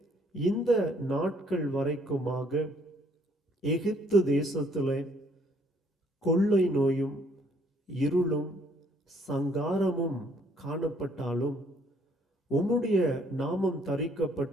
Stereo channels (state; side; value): normal; both; correlation 0.64